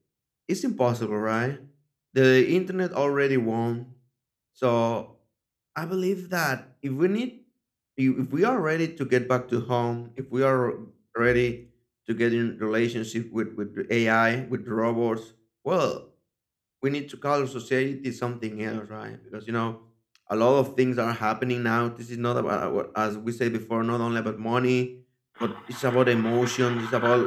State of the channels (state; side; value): identical; both; correlation 1.00